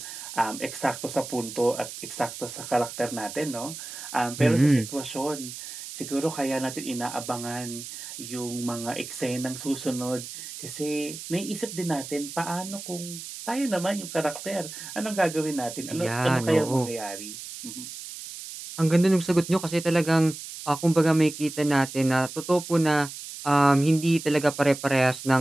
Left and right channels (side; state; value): right; noise; hiss, 11 dB below the sound